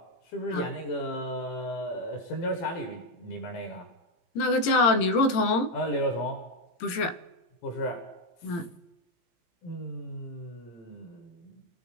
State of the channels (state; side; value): late; right; 17 ms